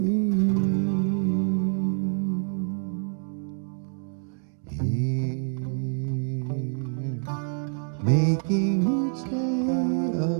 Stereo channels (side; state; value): left; silent; 60 dB below the other